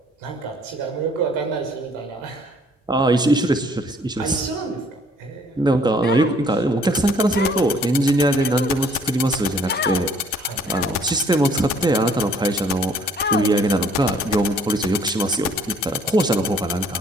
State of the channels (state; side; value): normal; both; correlation 0.60